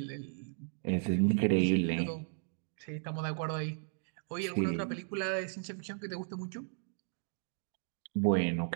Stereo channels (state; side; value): silent; left; digital silence